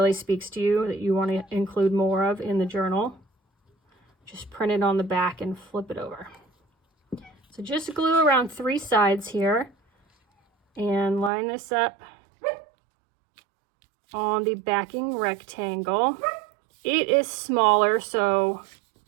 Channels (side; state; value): left; drops out; at 11.3 s